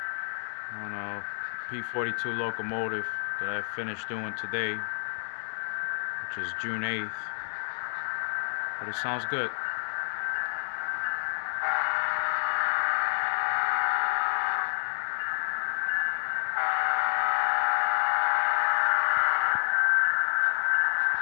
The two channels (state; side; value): silent; right; 59 dB below the other